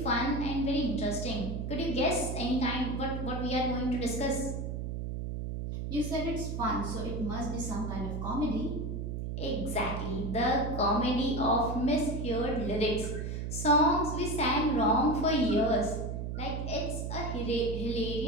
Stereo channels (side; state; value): right; noise; hum, 4 dB below the sound